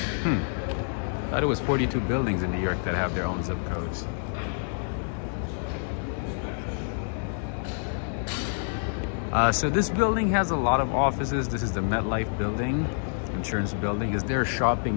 I thought it was 42 buildings in New York that have their own zip codes. So this building has a lot of offices. This is the MetLife building, insurance building. Is there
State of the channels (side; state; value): right; silent; digital silence